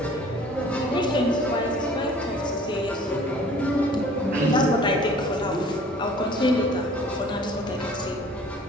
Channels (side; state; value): both; normal; correlation 0.50